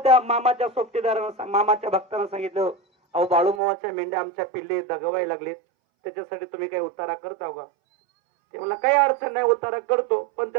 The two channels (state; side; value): drops out; left; at 3.6 s